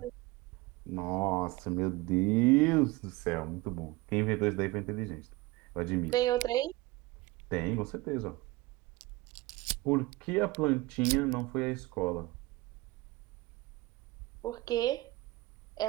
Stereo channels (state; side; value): quieter; left; 20.6 dB